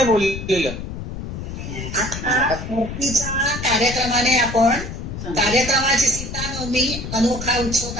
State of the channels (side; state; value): left; noise; rumble, 8 dB below the sound